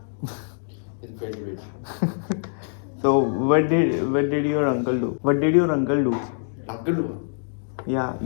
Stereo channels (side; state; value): right; silent; digital silence